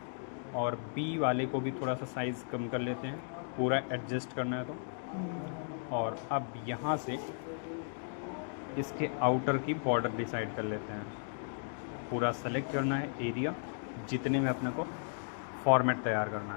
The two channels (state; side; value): silent; right; digital silence